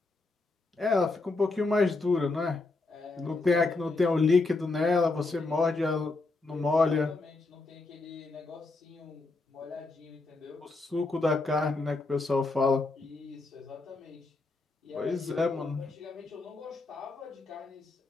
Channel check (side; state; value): right; quieter; 3.5 dB